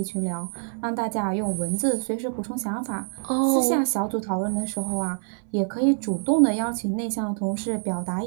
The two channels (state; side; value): silent; left; 61 dB below the other